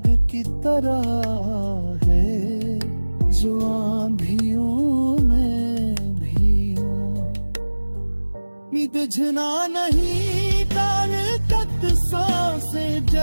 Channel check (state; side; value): inverted; both; correlation -1.00